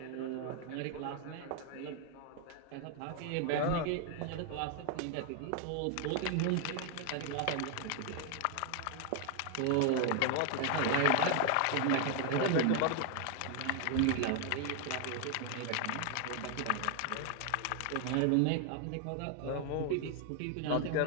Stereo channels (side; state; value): both; different; correlation 0.00